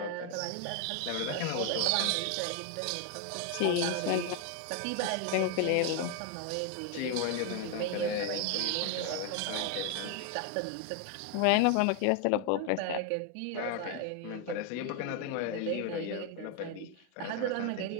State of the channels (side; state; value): both; different; correlation 0.01